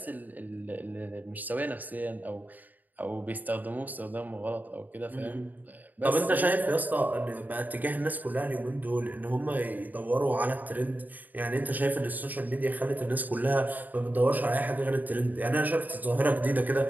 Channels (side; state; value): left; late; 0.083 ms